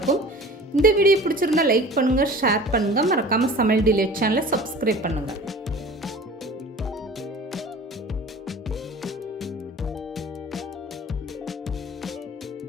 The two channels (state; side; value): normal; both; correlation 0.42